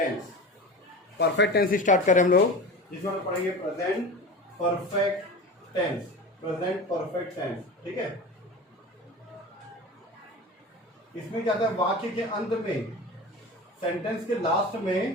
Perfect tense start करें हम लोग, जिसमें हम पढ़ेंगे present perfect tense, present perfect tense, ठीक है। इसमें क्या था, वाक्य के अंत में, सेंटेंस के लास्ट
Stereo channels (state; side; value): normal; both; correlation 0.32